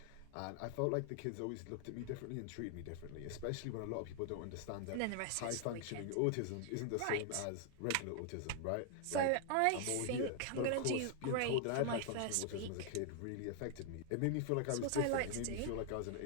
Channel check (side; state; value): both; different; correlation 0.00